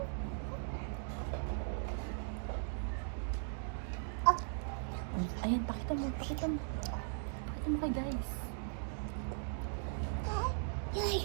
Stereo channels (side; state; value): left; silent; digital silence